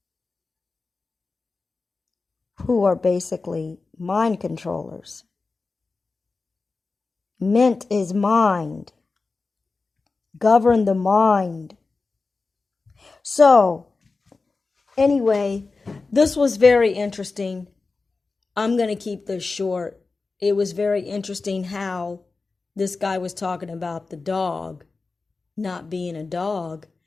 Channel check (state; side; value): quieter; right; 3.9 dB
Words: who are basically mind controllers. Ment is mind. Govern the mind. So, anyway, this was very interesting. I'm going to keep this short. It was very interesting how this guy was talking about the dog not being a dog.